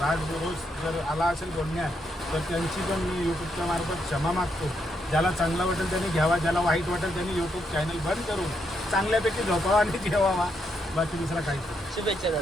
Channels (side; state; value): both; normal; correlation 0.78